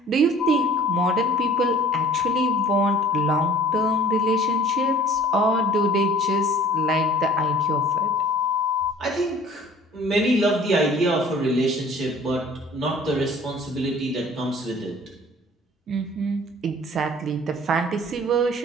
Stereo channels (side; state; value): both; normal; correlation 0.50